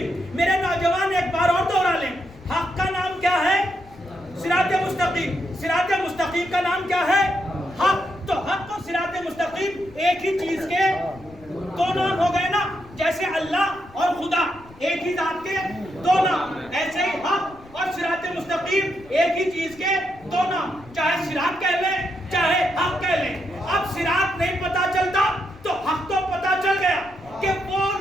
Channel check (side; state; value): left; noise; rumble, 23 dB below the sound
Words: میرے نوجوان ایک بار اور دوہرا لیں, حق کا نام کیا ہے, صراط مستقیم. صراط مستقیم کا نام کیا ہے, حق. تو حق اور صراط مستقیم ایک ہی چیز کے دو نام ہو گئے نا. جیسے اللہ اور خدا ایک ہی ذات کے دو نام, ایسے ہی حق اور صراط مستقیم ایک ہی چیز کے دو نام. چاہے صراط کہہ لیں چاہے حق کہہ لیں. اب صراط نہیں پتا چلتا تو حق تو پتا چل گیا کہ وہ